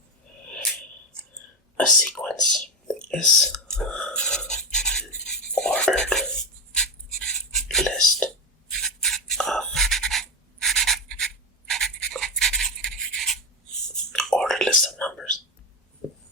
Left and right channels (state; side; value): normal; both; correlation 0.12